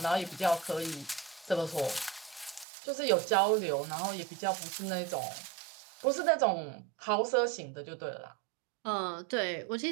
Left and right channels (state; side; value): drops out; left; at 2.7 s